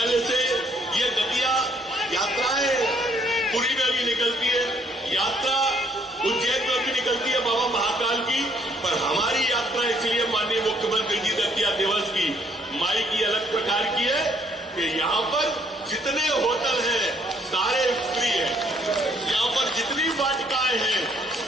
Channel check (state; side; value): normal; both; correlation 0.66